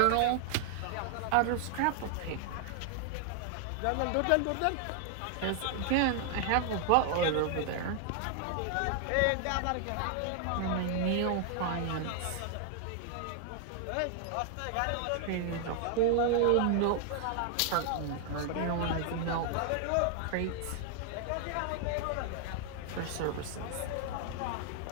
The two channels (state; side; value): different; both; correlation 0.00